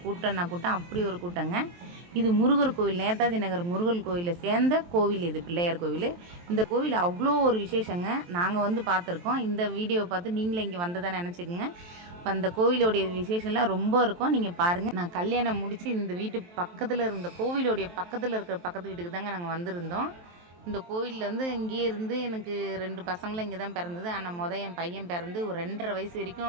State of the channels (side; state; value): left; late; 23 ms